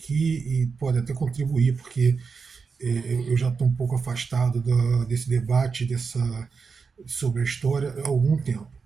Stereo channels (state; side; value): quieter; left; 5.2 dB